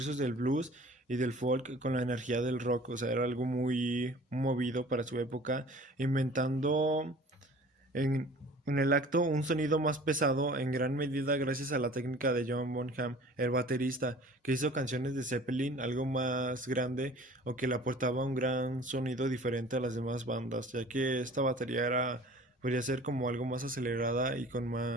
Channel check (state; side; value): normal; both; correlation 0.46